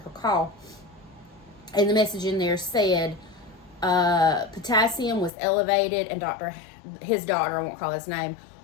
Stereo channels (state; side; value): drops out; right; at 5.3 s